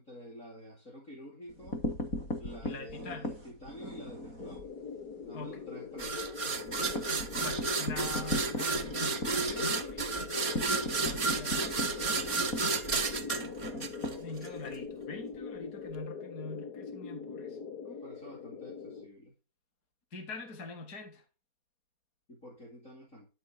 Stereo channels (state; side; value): late; right; 4.2 ms